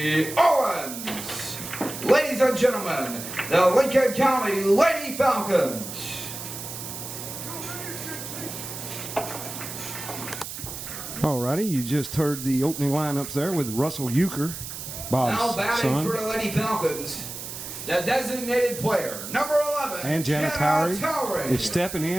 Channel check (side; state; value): right; noise; hiss, 9 dB below the sound